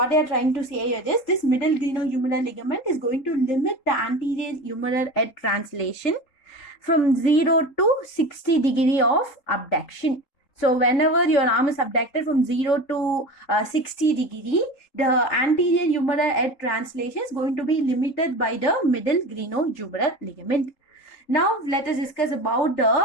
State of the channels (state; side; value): late; right; 3.8 ms